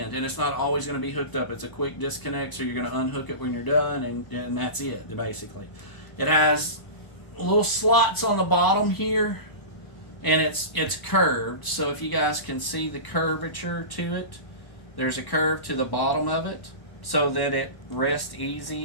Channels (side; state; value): right; late; 1.0 ms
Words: and it's not always going to be hooked up. It's a quick disconnect, so you're going to unhook it when you're done, and that's it, basically. It has little slots on the bottom here, and it's curved, so if you guys can see the curvature to it, there's a curve to the bottom of it so that it rests